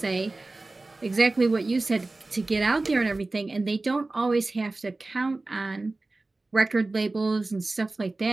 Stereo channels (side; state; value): left; quieter; 3.2 dB